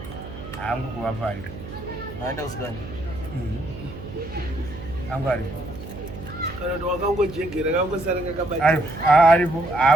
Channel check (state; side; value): noise; right; hum, 12 dB below the sound